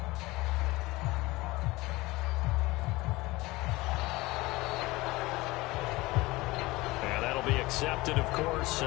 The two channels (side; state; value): right; quieter; 20.8 dB